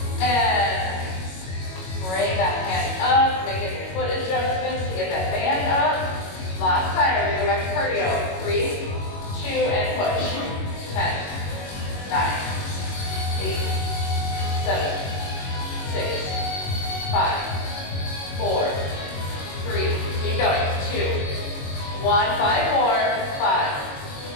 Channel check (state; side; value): late; right; 21 ms